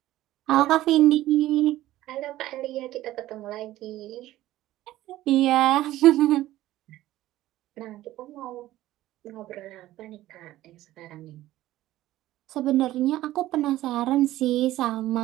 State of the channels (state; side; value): quieter; left; 15.3 dB